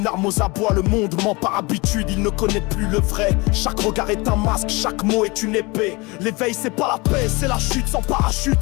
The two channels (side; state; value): right; quieter; 25.7 dB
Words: arme aux abois. Le monde ment par habitude, il ne connaît plus le vrai. Chaque regard est un masque, chaque mot est une épée. L'éveil c'est pas la paix, c'est la chute sans parachute.